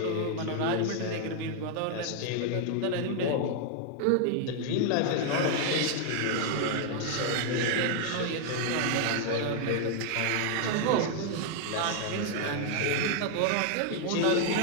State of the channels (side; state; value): both; different; correlation 0.00